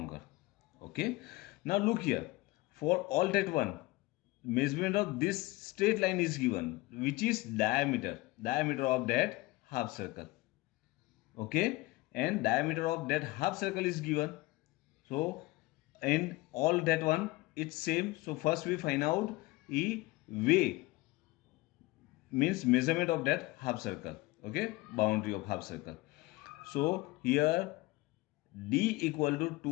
Okay, now look here, for all that one, measurement of this straight line is given, which is diameter of that half circle. Okay, and diameter of that half circle is given. So in all that one it's same. So first we find out E way, means measurement of that half circle. Okay, boundary of half circle. So here D equal to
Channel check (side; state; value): right; quieter; 20.9 dB